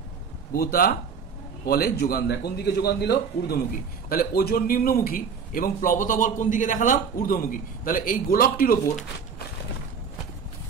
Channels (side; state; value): left; quieter; 6.2 dB